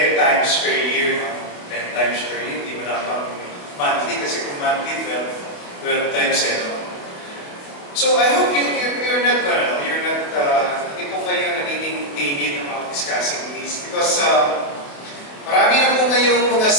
times per year. No? 10 times per year, hindi mo na pang monthly, kasi kung monthly, 12 times eh. No? So I hope you're not, hindi po kayo nagiging timid about discussing this, because marami na po ngayong mga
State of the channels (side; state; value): right; late; 28 ms